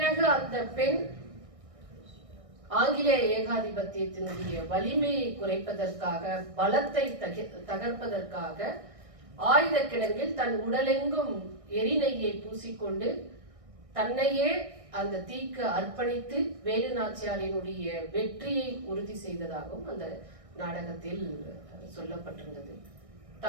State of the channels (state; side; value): late; left; 1.6 ms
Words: அந்த பெண் ஆங்கிலேய ஏகாதிபத்தியத்தினுடைய வலிமையை குறைப்பதற்காக, பலத்தை தகர்ப்பதற்காக ஆயுத கிடங்கில் தன் உடலெங்கும் எரிநெய்யை பூசிக்கொண்டு தன்னையே அந்த தீக்கு அர்ப்பணித்து வேலு நாச்சியாரினுடைய வெற்றியை உறுதி செய்ததாகவும் அந்த நாடகத்தில் சொல்லப்பட்டிருந்தது.